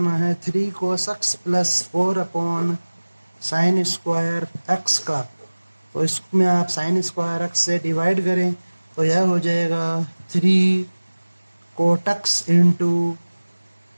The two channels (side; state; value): both; inverted; correlation -1.00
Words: है 3 cos x plus 4 upon sine square x का। तो इसमें आप साइन स्क्वायर एक्स से डिवाइड करें तो यह हो जाएगा 3 cot x into